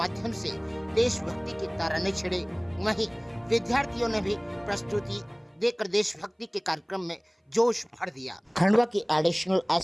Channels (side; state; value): both; identical; correlation 1.00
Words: से देशभक्ति के तराने छेड़े। वहीं विद्यार्थियों ने भी प्रस्तुति देकर देशभक्ति के कार्यक्रम में जोश भर दिया। खंडवा के एडिशनल